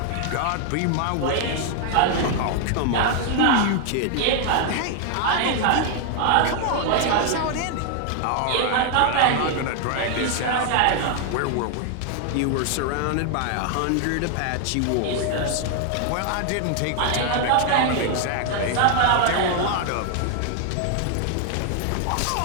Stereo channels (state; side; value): different; both; correlation 0.00